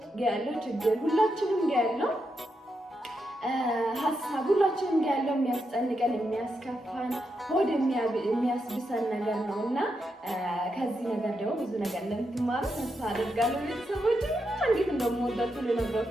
ጋር ያለው ችግር ሁላችንም ጋር ያለው ሀሳብ ሁላችንም ጋር ያለው የሚያስጨንቀን የሚያስከፋን ሆድ የሚያስብሰን ነገር ነው እና ከዚህ ነገር ደግሞ ብዙ ነገር እንደምትማሩ ተስፋ አደርጋለሁ። ቤተሰቦች እንዴት እንደምወዳችሁ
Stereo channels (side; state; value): both; normal; correlation 0.84